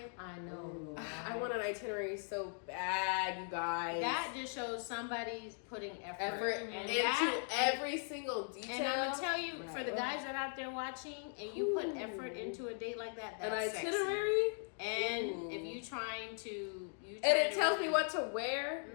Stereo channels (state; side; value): silent; right; 52 dB below the other